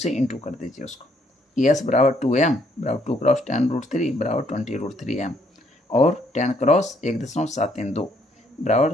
इंटू कर दीजिए उसको। एस बराबर 2m बराबर 2 क्रॉस 10√3 बराबर 20√3m और 10 क्रॉस 1.732 बराबर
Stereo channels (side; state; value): both; normal; correlation 0.69